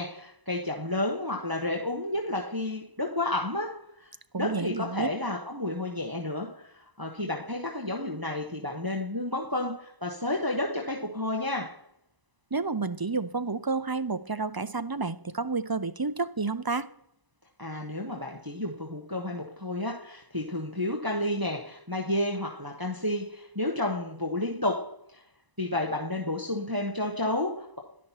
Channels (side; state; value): left; late; 1.0 ms